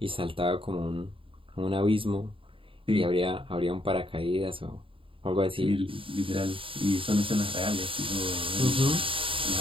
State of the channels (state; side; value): late; left; 0.26 ms